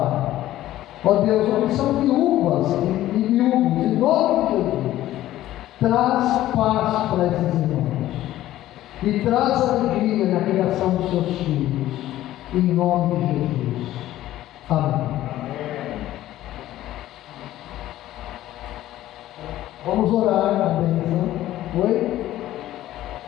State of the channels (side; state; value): right; quieter; 14.2 dB